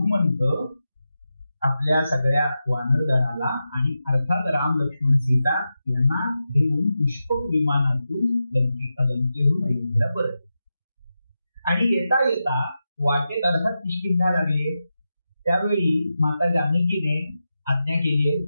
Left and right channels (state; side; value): inverted; both; correlation -0.90